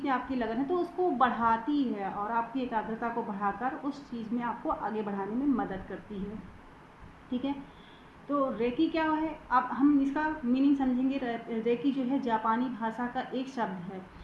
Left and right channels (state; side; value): identical; both; correlation 1.00